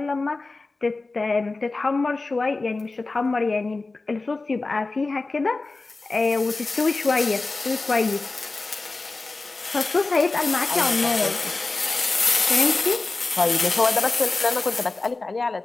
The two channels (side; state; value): right; quieter; 3.5 dB